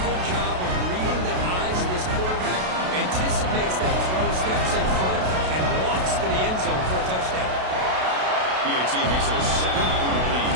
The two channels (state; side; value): late; left; 32 ms